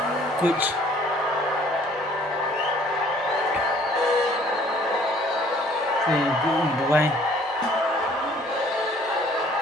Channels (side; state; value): both; normal; correlation 0.56